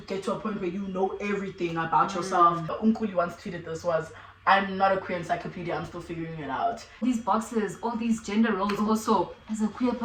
get to a point where you know everything about yourself. Unkuli once tweeted this was, I'm not a queer encyclopedia, I'm still figuring it out. These boxes, all these gender roles also, as a queer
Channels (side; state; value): both; identical; correlation 1.00